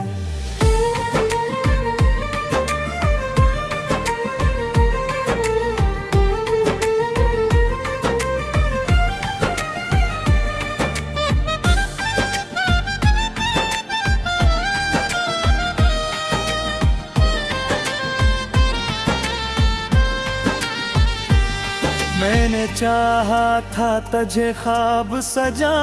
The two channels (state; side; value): identical; both; correlation 1.00